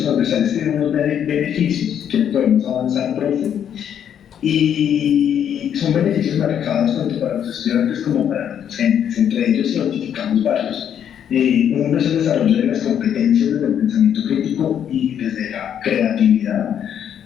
transversales tienen unos beneficios que podemos avanzar, profe, y son beneficios marcados tanto para los estudiantes como para los docentes. Entre ellos identificamos varios. Uno es el desarrollo de las competencias desde el pensamiento crítico y desde la creatividad.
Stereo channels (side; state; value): right; quieter; 9.1 dB